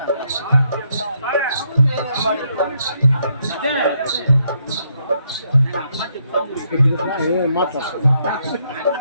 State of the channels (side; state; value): both; inverted; correlation -0.75